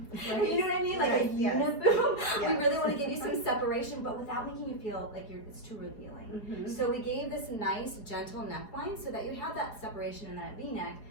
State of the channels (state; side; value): late; right; 4.8 ms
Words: what I mean? Like a uniboom. We really want to give you some separation, but without making you feel like it's too revealing. So we gave this nice, gentle neckline so that you have that separation in that V-neck,